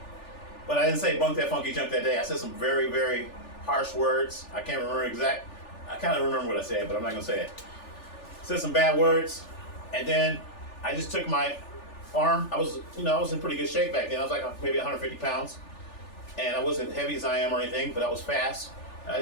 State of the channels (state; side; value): late; right; 3.4 ms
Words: But I didn't say bunk that funky junk that day. I said some very, very harsh words. I can't remember I kind of remember what I said, but I'm not going to say it. I said some bad words, and then I just took my arm. I was in pretty good shape back then. I was like maybe 150 pounds, and I wasn't heavy as I am or anything, but I was fast. And I